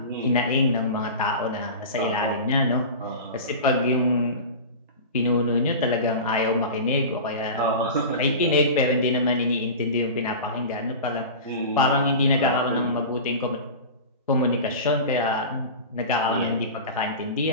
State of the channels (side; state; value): both; inverted; correlation -0.31